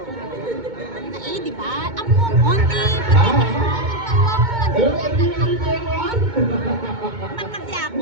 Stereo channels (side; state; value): left; late; 2.2 ms